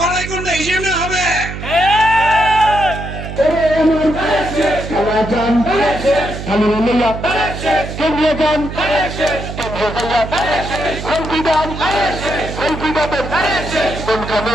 গুন্ডা হিসেবে হবে।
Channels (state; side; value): noise; right; hum, 8 dB below the sound